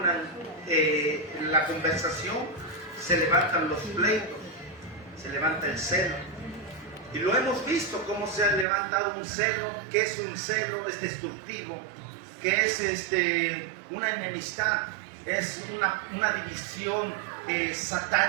la conversación, se levantan los pleitos, se levanta el celo. Y lo hemos visto cómo se ha levantado un celo. ¿Qué es un celo? Es destructivo. ¿Qué es una enemistad? Es una división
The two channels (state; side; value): drops out; left; at 8.7 s